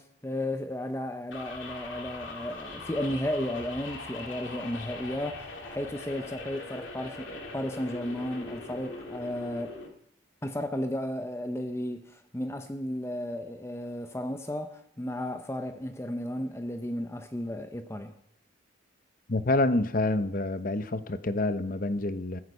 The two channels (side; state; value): both; normal; correlation 0.62